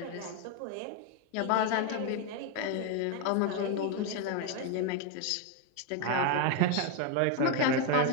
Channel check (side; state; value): both; different; correlation 0.01